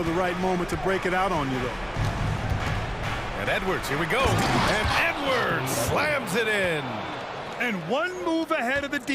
the right moment to break it out on you, though. And Edwards, here we go. And Edwards slams it in. And one move ahead of the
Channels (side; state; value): both; identical; correlation 1.00